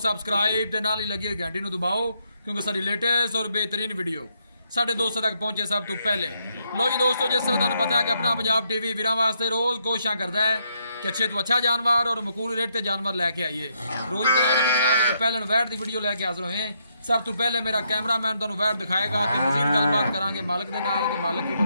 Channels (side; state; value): both; inverted; correlation -0.76